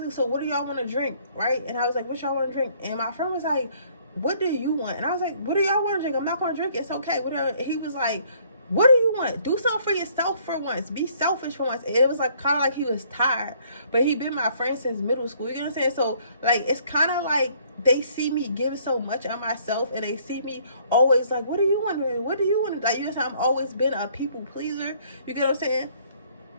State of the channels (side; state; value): both; inverted; correlation -0.62